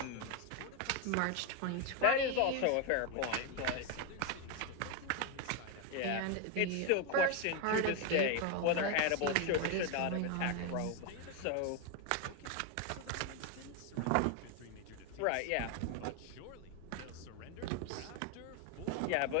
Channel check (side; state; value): both; different; correlation 0.02